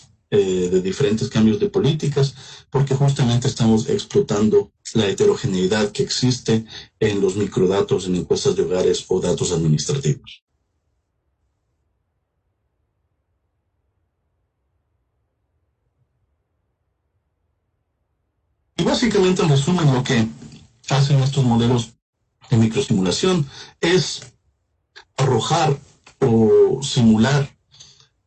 de diferentes cambios de políticas, porque justamente estamos explotando la heterogeneidad que existe en los microdatos, en encuestas de hogares o datos administrativos. Y básicamente, en resumen, lo que hacen estos modelos de microsimulación es arrojar o simular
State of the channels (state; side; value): identical; both; correlation 1.00